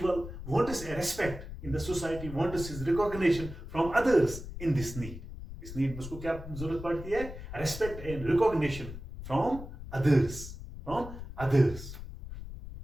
wants a respect in the society, wants his recognition from others in this need. इस need में उसको क्या जरूरत पड़ती है? Respect and recognition from others.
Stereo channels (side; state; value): left; noise; rumble, 11 dB below the sound